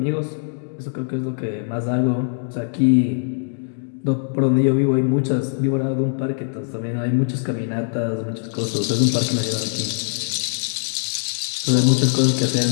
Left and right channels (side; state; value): right; silent; digital silence